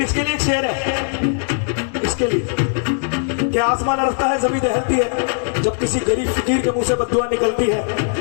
इसके लिए एक शेर है, इसके लिए कि आसमान अरसता है, जमीन दहलती है, जब किसी गरीब फकीर के मुंह से बद्दुआ निकलती है।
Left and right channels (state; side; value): silent; right; 66 dB below the other